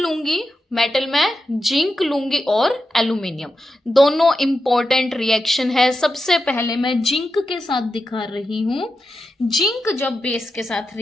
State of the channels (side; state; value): both; normal; correlation 0.89